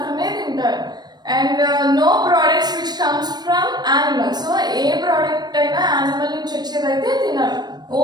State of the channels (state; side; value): late; left; 0.20 ms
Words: తింటారు. And no products which comes from animals. So ఏ ప్రోడక్ట్ అయినా యానిమల్ నుంచి వచ్చేదైతే తినరు.